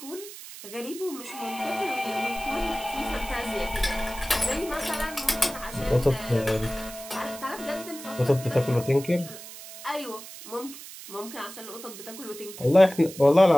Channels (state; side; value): noise; right; hiss, 14 dB below the sound